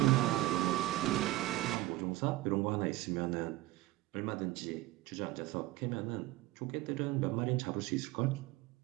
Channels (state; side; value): quieter; left; 17.8 dB